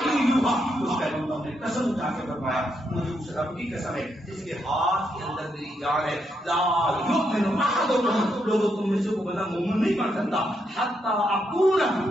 یوحى. اس پیغمبر نے قسم اٹھا کے فرمایا مجھے اس رب کی قسم ہے جس کے ہاتھ کے اندر میری جان ہے، لا یؤمن احدکم، لوگوں تم میں سے کوئی بندہ مومن نہیں بن سکتا حتی اکون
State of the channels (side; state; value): both; normal; correlation 0.79